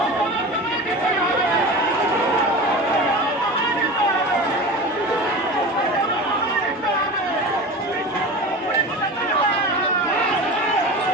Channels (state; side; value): normal; both; correlation 0.32